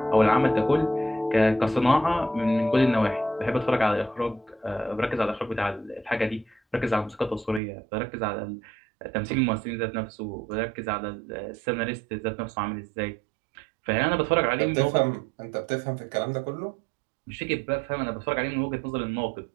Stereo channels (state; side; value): drops out; left; at 7.6 s